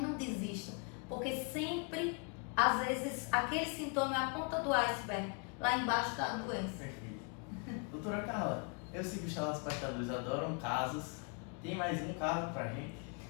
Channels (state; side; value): quieter; right; 36.5 dB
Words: desista, porque sempre, às vezes, aquele sintoma é a ponta do iceberg. Lá embaixo está a doença. Perfeito. Doutora Carla, eu sei que os telespectadores adoram casos. Tem mais um caso pra gente,